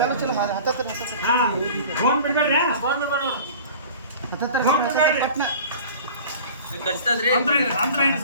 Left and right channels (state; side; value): inverted; both; correlation -0.42